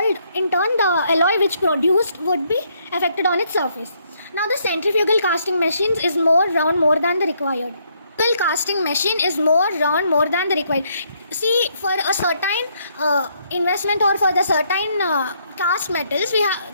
alloy which produced would be affected on its surface. Now the centrifugal casting machines is more round more than the required. Casting machine is more round more than the required. See, for a certain investment or for the certain cast metals,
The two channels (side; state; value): both; inverted; correlation -0.71